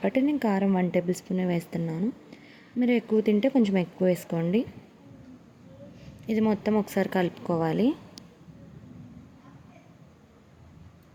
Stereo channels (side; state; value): both; identical; correlation 1.00